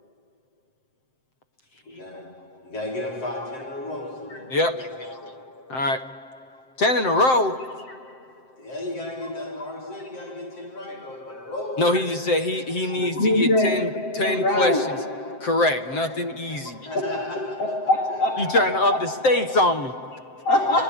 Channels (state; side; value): late; right; 7.7 ms